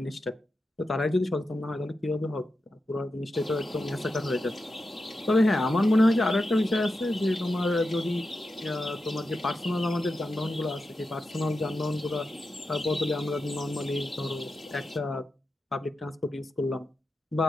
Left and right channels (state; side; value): normal; both; correlation 0.90